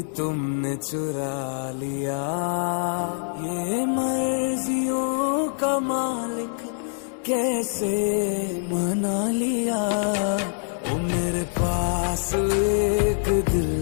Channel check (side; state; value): right; silent; digital silence